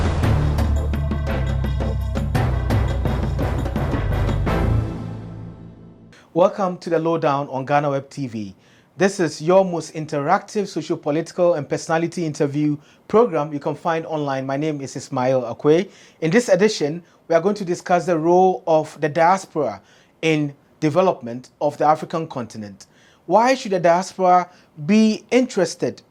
Welcome to the Lowdown on GhanaWeb TV. This is your most interactive socio-political and personality interview program you can find online. My name is Ismail Akwe. In this edition, we are going to discuss the role of the diaspora in development of the African continent. Why should the diaspora be interested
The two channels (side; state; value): both; identical; correlation 1.00